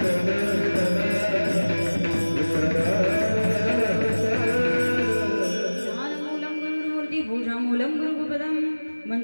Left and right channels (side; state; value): both; inverted; correlation -1.00